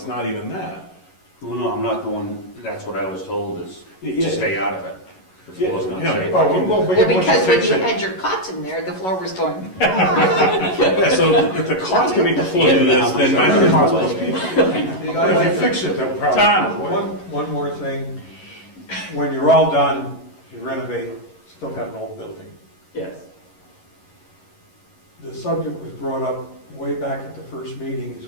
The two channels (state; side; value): late; right; 11 ms